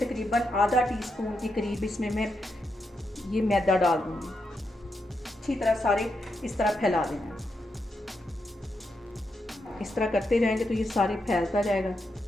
आधा टीस्पून के करीब इसमें मैं ये मैदा डाल दूँगी। अच्छी तरह सारे इस तरह फैला देना है। इस तरह करते जाएंगे तो ये सारे फैलता जाएगा।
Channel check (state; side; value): normal; both; correlation 0.84